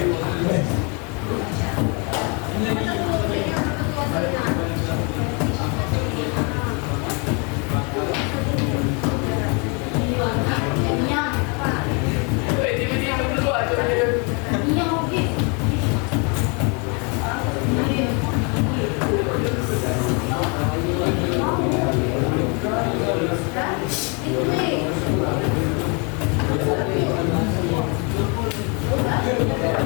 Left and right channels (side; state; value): right; quieter; 33.3 dB